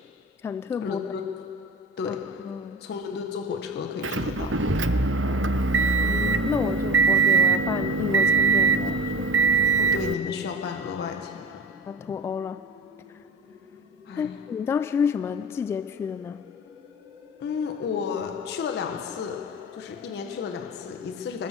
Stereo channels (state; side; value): normal; both; correlation 0.32